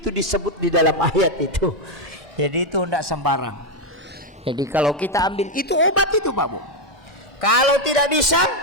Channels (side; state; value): both; normal; correlation 0.04